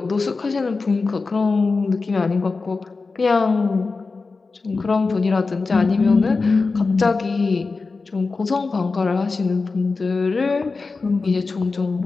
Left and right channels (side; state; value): right; quieter; 4.1 dB